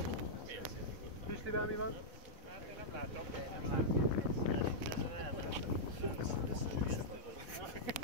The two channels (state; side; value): late; left; 4.0 ms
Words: Pistivel mi van? Nem látom.